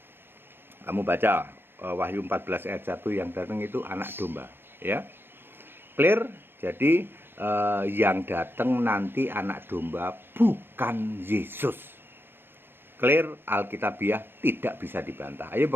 Kamu baca Wahyu 14 ayat 1, yang datang itu anak domba, ya. Clear? Jadi yang datang nanti anak domba bukan Yesus. Clear? Alkitabiah tidak bisa dibantah. Ayo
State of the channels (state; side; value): late; left; 0.10 ms